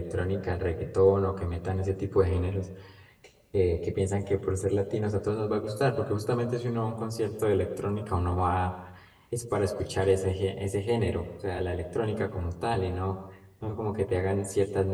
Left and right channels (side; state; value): both; identical; correlation 1.00